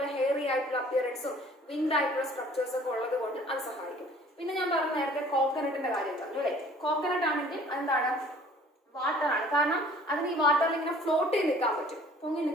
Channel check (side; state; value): both; normal; correlation 0.52